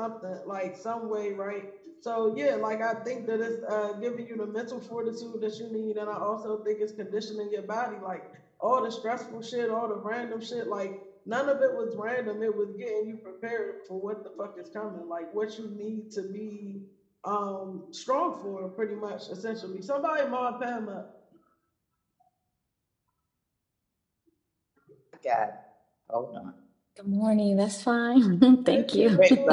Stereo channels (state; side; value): identical; both; correlation 1.00